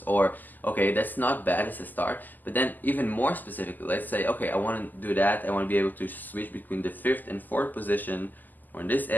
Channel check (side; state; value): right; late; 0.085 ms